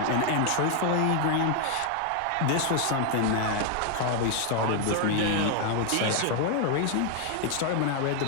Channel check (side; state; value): both; different; correlation 0.00